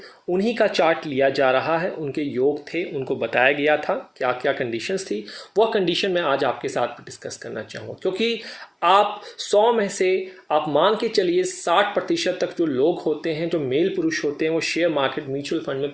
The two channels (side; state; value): both; identical; correlation 1.00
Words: उन्हीं का चार्ट लिया जा रहा है। उनके योग थे, उनको बताया गया था क्या क्या कंडीशंस थी। वह कंडीशन मैं आज आपके साथ डिस्कस करना चाहूँगा, क्योंकि आप 100 में से आप मान के चलिए 60% तक जो लोग होते हैं, जो मेल पुरुष होते हैं, वो शेयर मार्केट म्यूचुअल फंड में